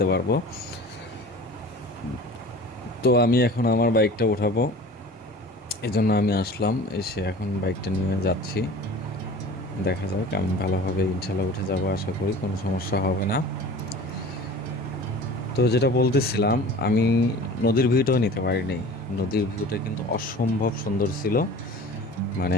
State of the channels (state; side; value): normal; both; correlation 0.40